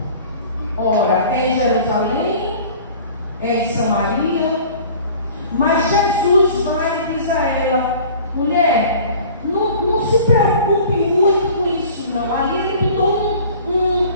Ora, é em Jerusalém, é em Samaria. Mas Jesus vai e diz a ela: mulher, não se preocupe muito com isso não. Ali ele botou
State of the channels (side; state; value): both; inverted; correlation -0.46